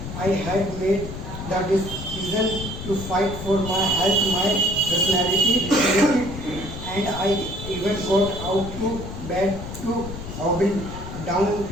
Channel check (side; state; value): left; noise; rumble, 9 dB below the sound